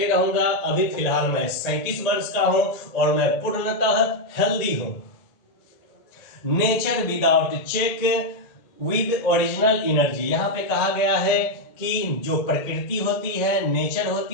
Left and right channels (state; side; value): late; right; 1.8 ms